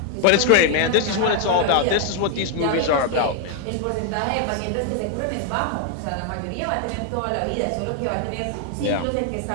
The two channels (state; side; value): different; both; correlation 0.00